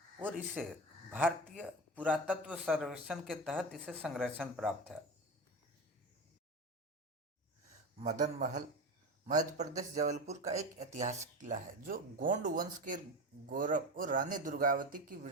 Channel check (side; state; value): both; normal; correlation 0.24